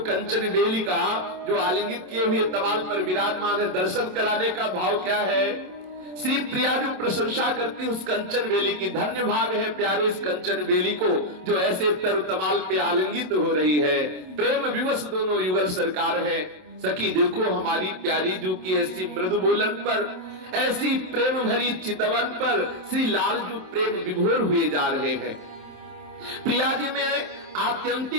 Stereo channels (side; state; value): left; late; 27 ms